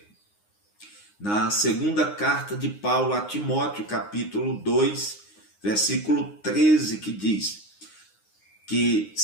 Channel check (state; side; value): late; right; 9.7 ms